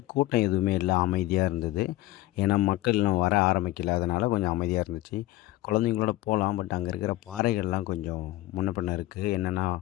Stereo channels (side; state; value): right; quieter; 16.8 dB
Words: கூட்டம் எதுவுமே இல்லை, அமைதியாக இருந்தது. ஏன்னா மக்கள் இன்னும் வர ஆரம்பிக்கல, அதனால் கொஞ்சம் அமைதியாக இருந்துச்சு. குழந்தைங்களோட போகலாம், பட் அங்கே இருக்கிற பாறைகள்லாம் கொஞ்சம் முன்ன பின்ன இருக்குது. என்னென்னா